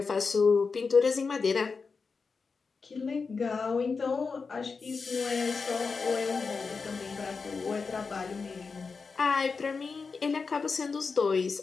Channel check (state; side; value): quieter; right; 4.8 dB